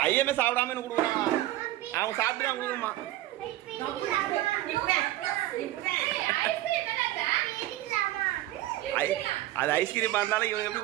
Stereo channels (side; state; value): left; quieter; 15.5 dB